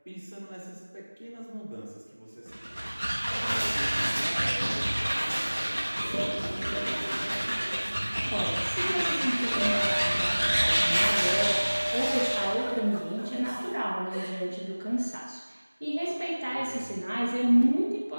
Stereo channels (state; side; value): inverted; both; correlation -1.00